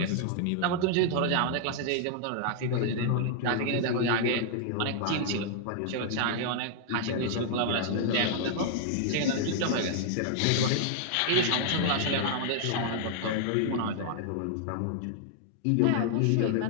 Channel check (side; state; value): both; different; correlation -0.01